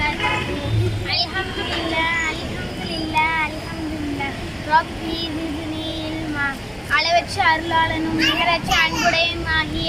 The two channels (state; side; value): identical; both; correlation 1.00